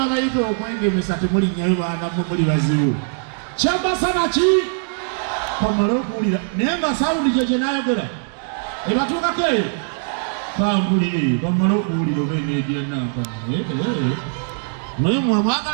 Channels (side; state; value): left; silent; digital silence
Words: okwengemesa temulinnyayo baana muli bazibu. Kyabasa naki? Kamala okuwulira. Naye nga sawundi gye n'ayogera. Ebatuukako eyo. Kambuli, kamala okuwulira oba eneegira nankana. Naye